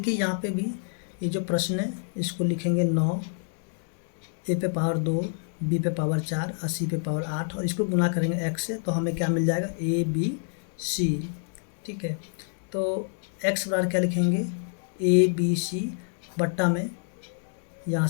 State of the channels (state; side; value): silent; right; 60 dB below the other